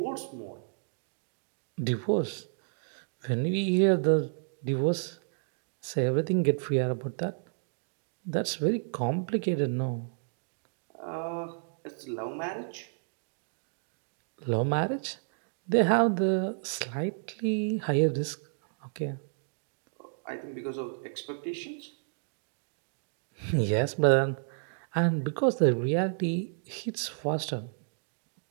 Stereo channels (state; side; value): silent; left; digital silence